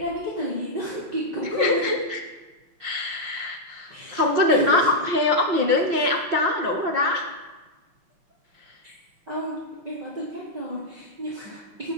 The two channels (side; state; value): left; late; 5.6 ms